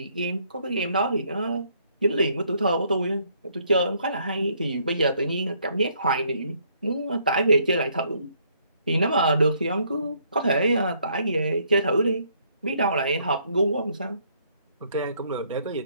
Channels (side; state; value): both; inverted; correlation -0.68